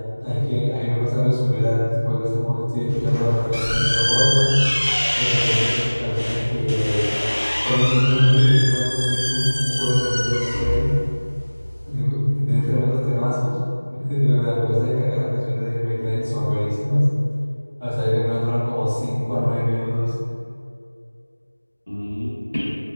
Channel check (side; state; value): both; inverted; correlation -1.00